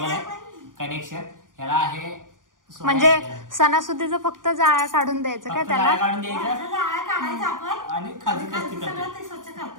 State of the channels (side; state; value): left; late; 0.89 ms